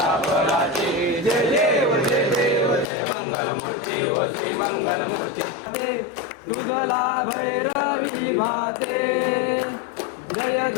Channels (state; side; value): drops out; right; at 2.9 s